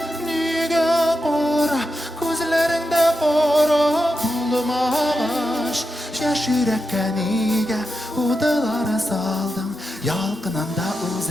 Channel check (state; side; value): normal; both; correlation 0.88